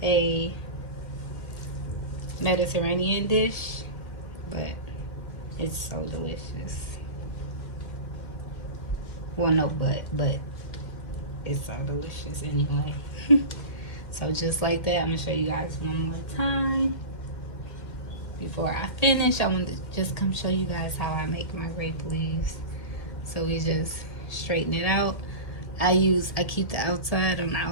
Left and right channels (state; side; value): late; right; 2.1 ms